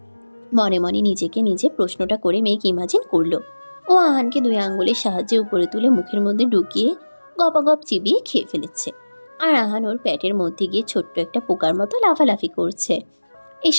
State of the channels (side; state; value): both; inverted; correlation -1.00